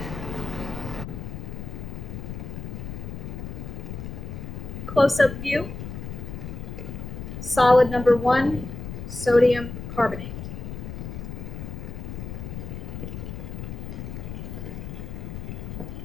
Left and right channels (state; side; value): noise; left; rumble, 7 dB below the sound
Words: Close-up view. Solid number 1, sodium carbonate.